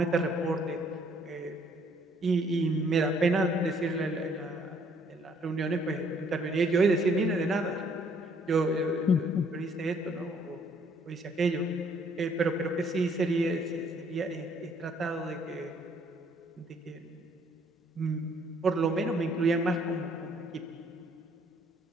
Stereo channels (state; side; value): normal; both; correlation 0.64